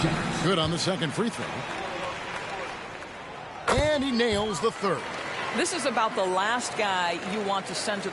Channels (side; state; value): both; identical; correlation 1.00